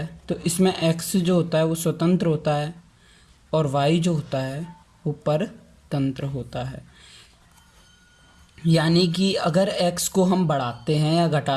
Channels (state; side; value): identical; both; correlation 1.00